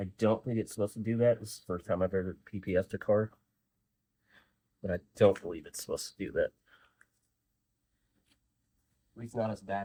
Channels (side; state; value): both; identical; correlation 1.00